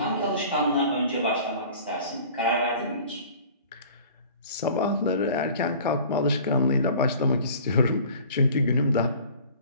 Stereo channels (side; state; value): both; inverted; correlation -0.46